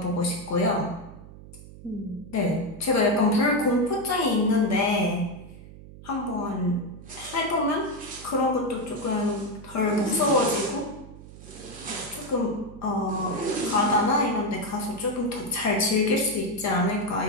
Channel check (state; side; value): noise; right; hum, 17 dB below the sound